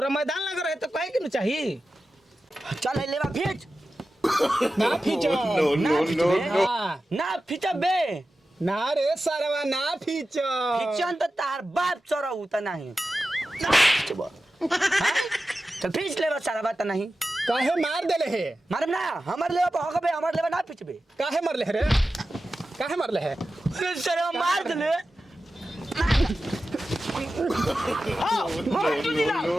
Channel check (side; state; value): both; normal; correlation 0.93